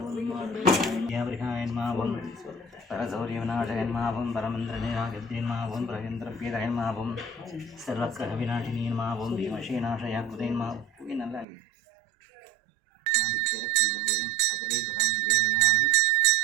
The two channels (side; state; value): left; drops out; at 11.5 s